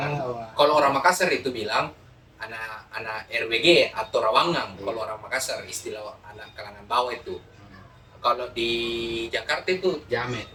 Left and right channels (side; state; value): both; identical; correlation 1.00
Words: Kalau orang Makassar itu bilang anak RWG atau Rawangang. Iya. Kalau orang Makassar istilah anak kalangan bawah itu. Kalau di Jakarta itu Jamet.